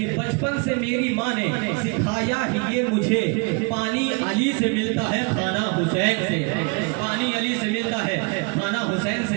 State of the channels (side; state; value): left; quieter; 31.3 dB